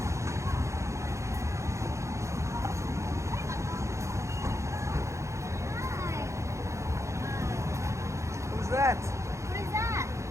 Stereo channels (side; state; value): left; late; 0.14 ms